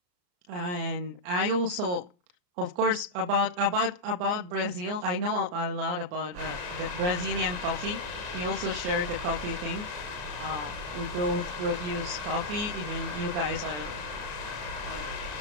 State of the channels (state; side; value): late; left; 34 ms